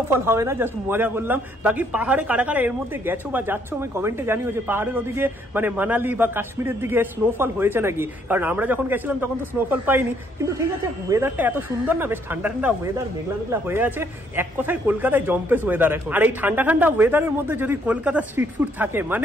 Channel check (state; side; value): normal; both; correlation 0.68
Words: হবে না, জাস্ট মজা করলাম। বাকি পাহাড়ে কারা কারা এর মধ্যে গেছো বা যাচ্ছ আমি কমেন্টে জানিও যে পাহাড়ের ওদিকে মানে মানালি বা কাশ্মীরের দিকে স্নোফল হয়েছে নাকি। কারণ আমরা যখন গেছিলাম তখন তো স্নোফল পাইনি। কিন্তু ঠিক আছে, ওয়েদারটা এত সুন্দর না, বেশ ঠান্ডা ঠান্ডা ওয়েদার, মেঘলা মেঘলা হয়ে আছে। এক কথায় কলকাতায় জম্পেস ওয়েদার এখন। আর এই ঠান্ডা ঠান্ডা ওয়েদারের মধ্যে যদি কলকাতা স্ট্রিট ফুড থাকে